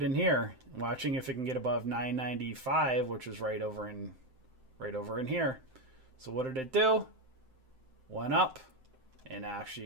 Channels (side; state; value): left; late; 7.7 ms